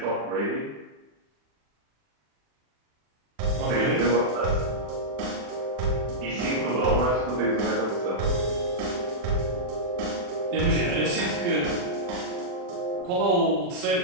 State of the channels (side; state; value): left; late; 40 ms